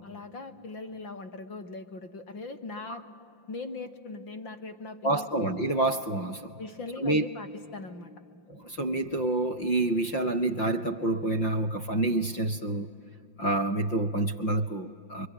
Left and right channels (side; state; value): right; late; 5.8 ms